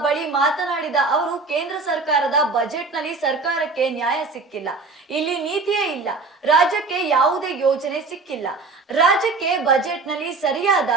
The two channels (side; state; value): left; quieter; 3.9 dB